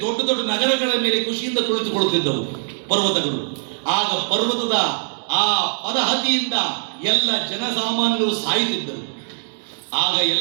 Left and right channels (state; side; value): silent; left; digital silence